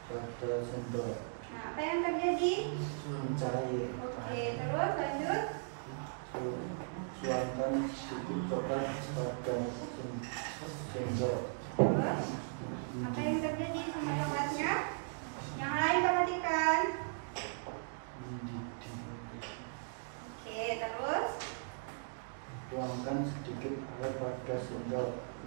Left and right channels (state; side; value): silent; left; digital silence